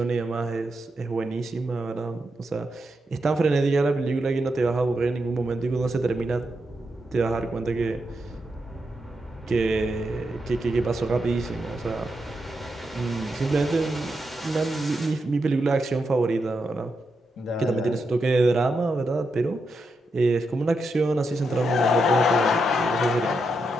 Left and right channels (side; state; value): both; normal; correlation 0.84